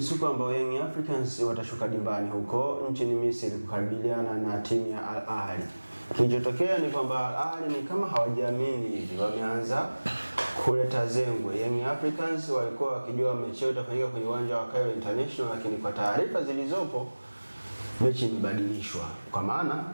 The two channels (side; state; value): both; inverted; correlation -1.00